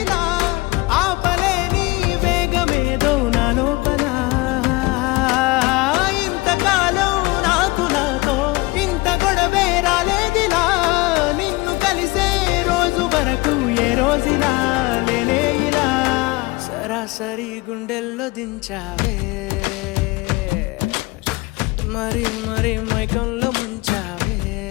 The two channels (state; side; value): quieter; right; 22.9 dB